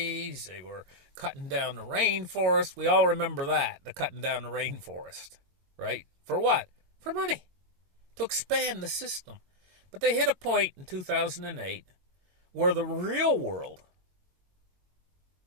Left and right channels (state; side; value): late; left; 22 ms